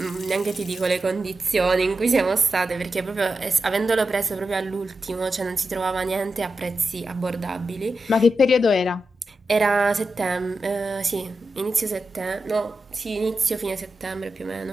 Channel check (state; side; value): normal; both; correlation 0.89